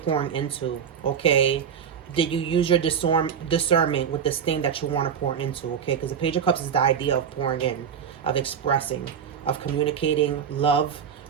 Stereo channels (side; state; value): left; quieter; 7.7 dB